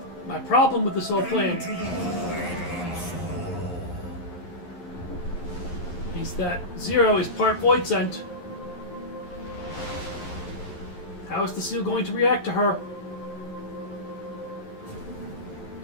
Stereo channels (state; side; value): late; right; 11 ms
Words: My problem with this whole plan... means that Zero is part Void Sent. How is the seal going to react to her?